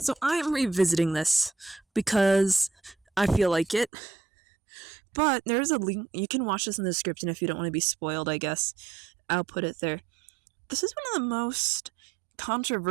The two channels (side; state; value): left; drops out; at 3.9 s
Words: I am revisiting this because I feel like it. But there's a link. You can watch this in the description if you don't want to be spoiled, I guess. I'll put it there. This is one of the most